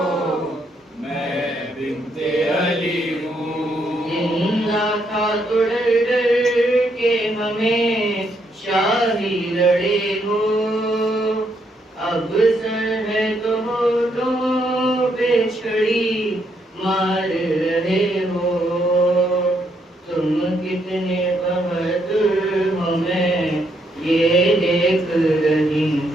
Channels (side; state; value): both; normal; correlation 0.75